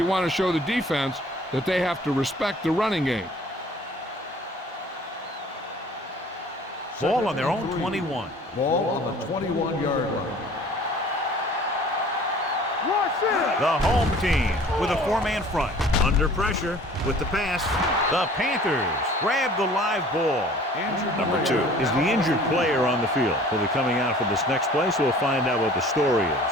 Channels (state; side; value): normal; both; correlation 0.49